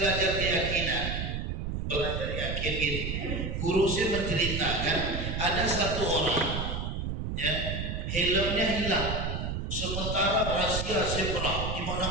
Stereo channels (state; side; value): noise; right; rumble, 3 dB below the sound